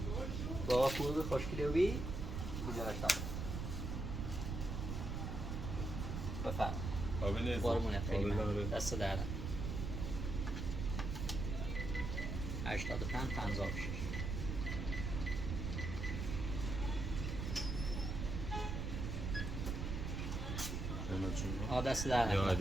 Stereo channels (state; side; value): noise; right; rumble, 3 dB below the sound